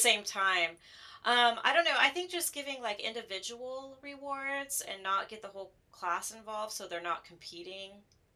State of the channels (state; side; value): identical; both; correlation 1.00